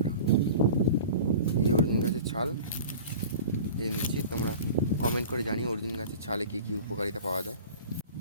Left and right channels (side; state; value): both; inverted; correlation -0.39